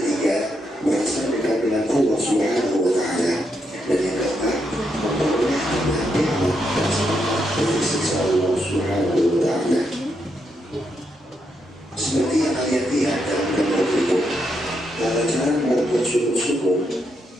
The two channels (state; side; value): normal; both; correlation 0.80